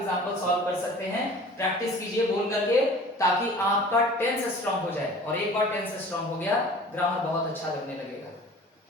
सॉल्व कर सकते हैं, प्रैक्टिस कीजिए बोल करके, ताकि आपका टेंस स्ट्रांग हो जाए, और एक बार टेंस स्ट्रांग हो गया ग्रामर बहुत अच्छा लगने लगेगा।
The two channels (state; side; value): normal; both; correlation 0.45